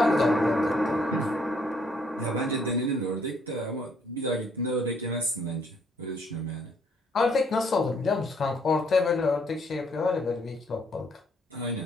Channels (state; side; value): normal; both; correlation 0.67